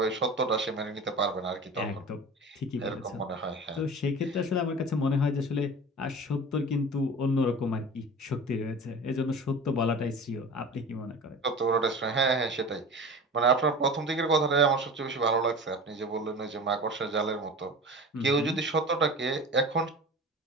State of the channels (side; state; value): both; normal; correlation 0.36